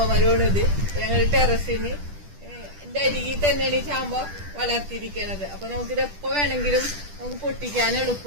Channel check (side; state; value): left; late; 10 ms